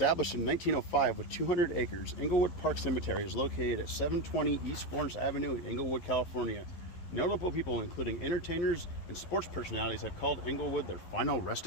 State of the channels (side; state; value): right; late; 11 ms